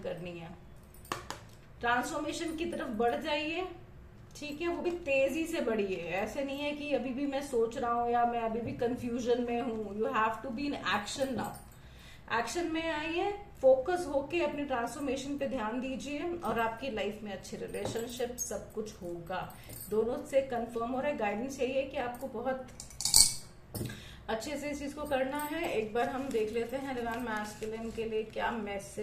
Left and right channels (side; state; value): both; identical; correlation 1.00